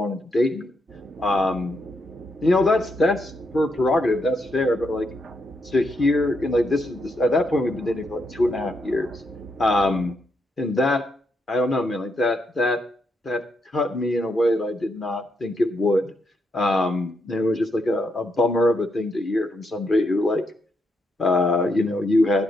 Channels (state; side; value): normal; both; correlation 0.79